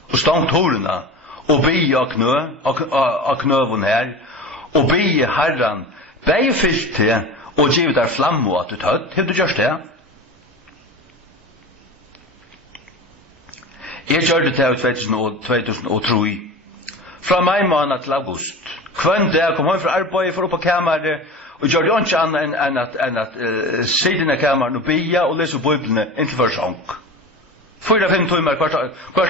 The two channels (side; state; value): both; normal; correlation 0.32